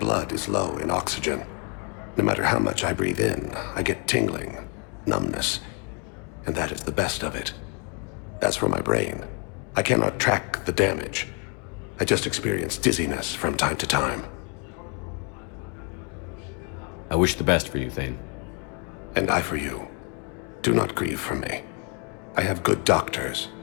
is low in oxygen. No matter how much I breathe in, I get tingling, numbness, and that is the best of it. As for my brain, I cannot track the damage. I just experience dizziness from time to time. I wish the best for you, Thane. And I for you. Do not grieve for me. I have good doctors.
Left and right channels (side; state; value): right; quieter; 36.9 dB